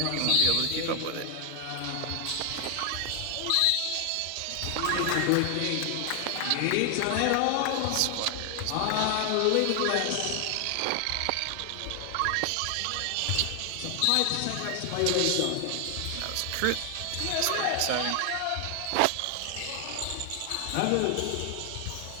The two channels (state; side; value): different; both; correlation 0.00